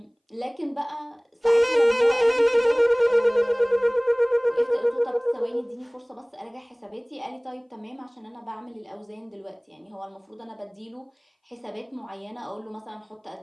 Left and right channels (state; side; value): identical; both; correlation 1.00